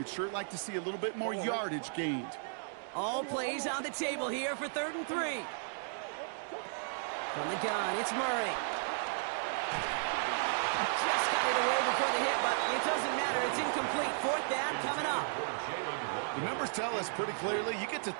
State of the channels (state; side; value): silent; left; digital silence